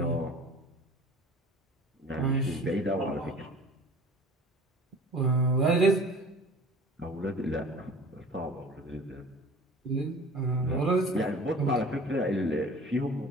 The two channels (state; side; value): normal; both; correlation 0.44